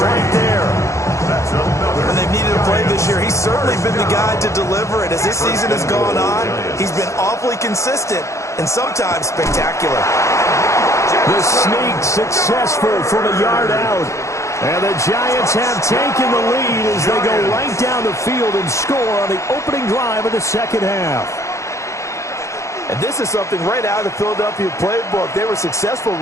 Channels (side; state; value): right; late; 0.14 ms